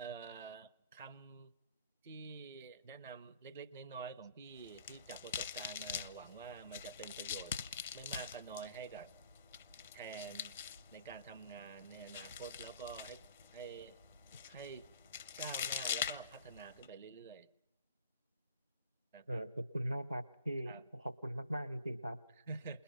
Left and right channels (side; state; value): both; inverted; correlation -0.54